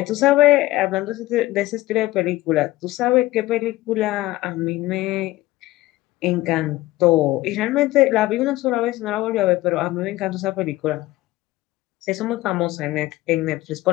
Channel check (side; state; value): right; quieter; 17.7 dB